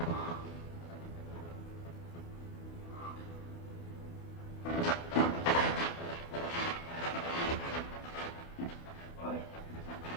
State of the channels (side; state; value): right; late; 28 ms